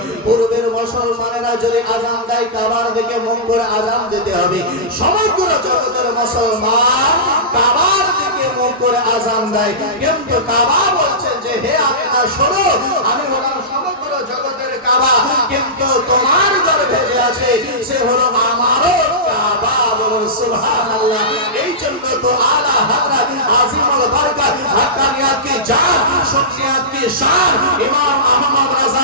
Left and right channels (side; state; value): both; normal; correlation -0.17